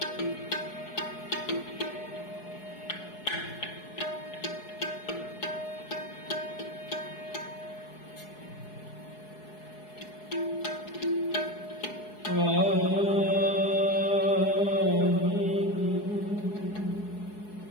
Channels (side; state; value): right; late; 4.7 ms